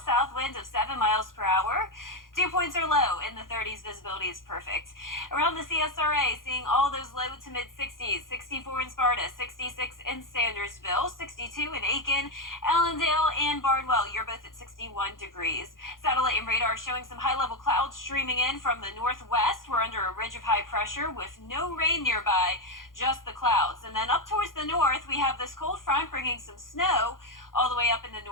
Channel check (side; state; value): right; late; 0.90 ms